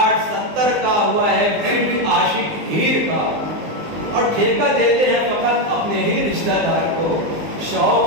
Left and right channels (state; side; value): late; left; 19 ms